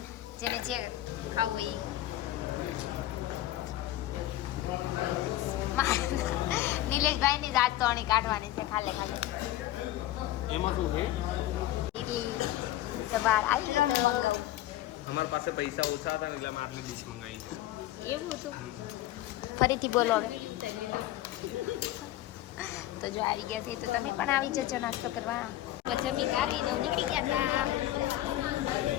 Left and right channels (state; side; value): quieter; right; 14.6 dB